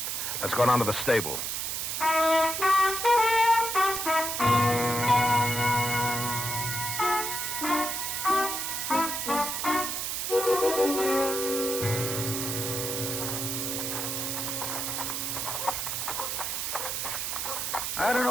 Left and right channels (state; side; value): noise; right; hiss, 2 dB below the sound